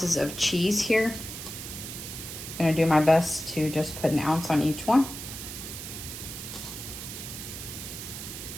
of cheese here. I'm gonna do my best to just put 1 ounce on each one.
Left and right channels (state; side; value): noise; right; hiss, 9 dB below the sound